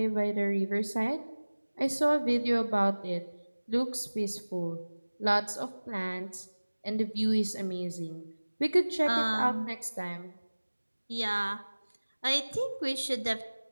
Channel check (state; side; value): inverted; both; correlation -1.00